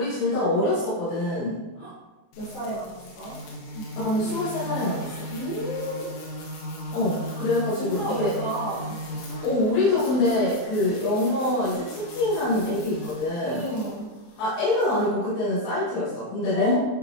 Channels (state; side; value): late; right; 24 ms